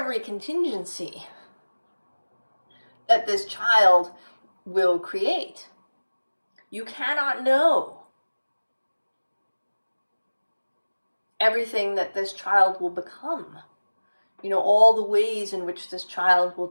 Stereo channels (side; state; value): both; inverted; correlation -1.00